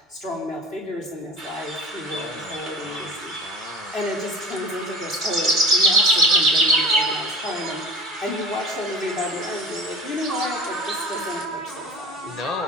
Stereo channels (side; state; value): both; normal; correlation 0.37